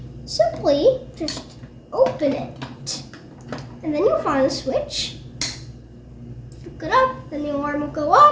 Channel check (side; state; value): both; identical; correlation 1.00